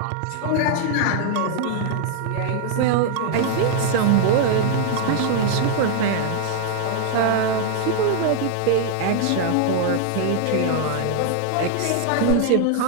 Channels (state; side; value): different; both; correlation 0.00